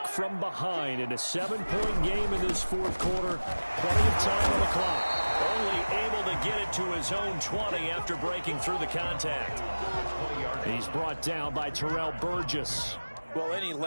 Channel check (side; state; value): both; inverted; correlation -1.00